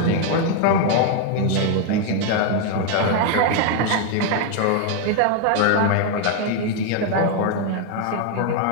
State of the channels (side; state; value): both; different; correlation 0.01